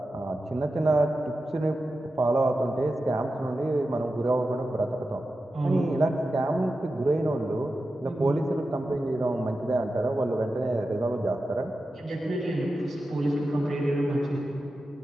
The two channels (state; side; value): normal; both; correlation 0.92